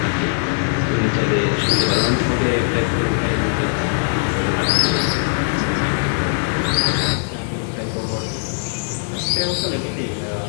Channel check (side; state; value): right; silent; digital silence